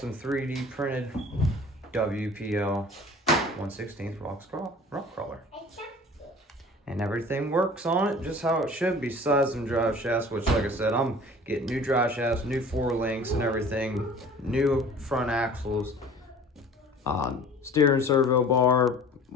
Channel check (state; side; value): normal; both; correlation 0.45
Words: 3D printed WPL 1/16 rock crawler. And everything works on it just how it should be. Besides some drive shafts, which like I said, I'm getting new drive shafts, new 4 links and everything, new front axles, steering servo bar,